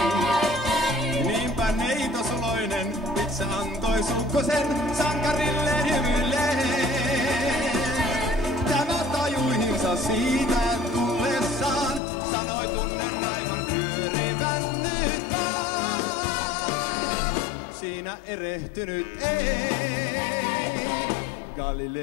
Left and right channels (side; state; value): right; drops out; at 12.0 s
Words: Niinpä neitosuloinen itse antoi sukkosen sankarilleen hymyilleen. Tämä tajuihinsa siitä tullessaan, sanoi tunnen aivan pyörivän nyt vaan. Siinä erehtynyt ei.